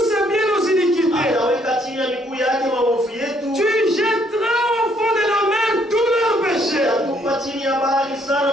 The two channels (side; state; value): both; normal; correlation 0.68